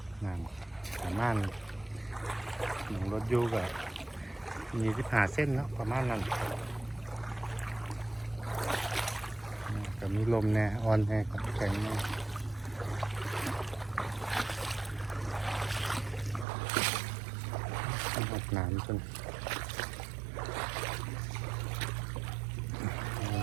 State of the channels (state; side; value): drops out; left; at 16.4 s